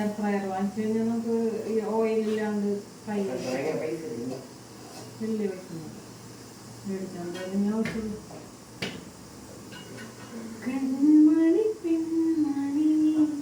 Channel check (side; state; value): both; identical; correlation 1.00